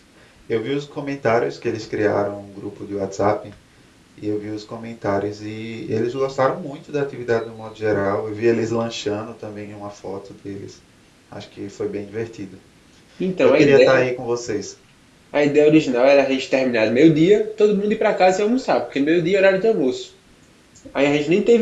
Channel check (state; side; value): identical; both; correlation 1.00